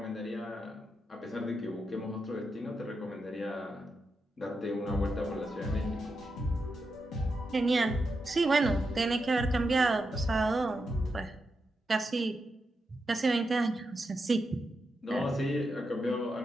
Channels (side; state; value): both; normal; correlation 0.86